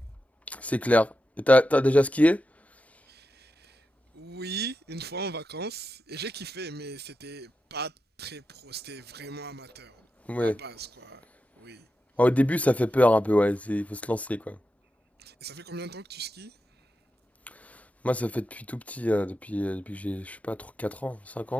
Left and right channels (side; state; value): both; normal; correlation 0.90